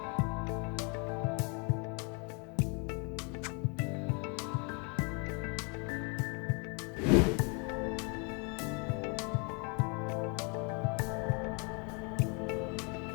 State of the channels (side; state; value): right; quieter; 34.0 dB